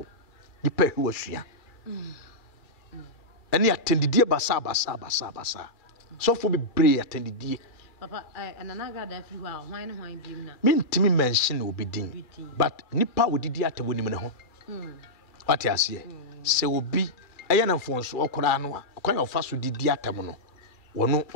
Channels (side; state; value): right; late; 2.3 ms